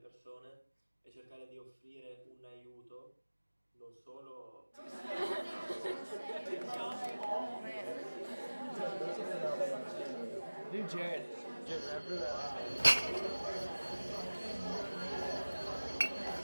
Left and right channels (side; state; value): both; inverted; correlation -1.00